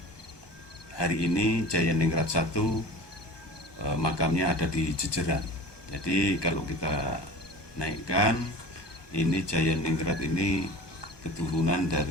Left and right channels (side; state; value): right; late; 1.2 ms